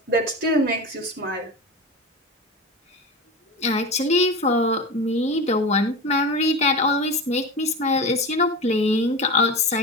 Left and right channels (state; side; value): normal; both; correlation 0.27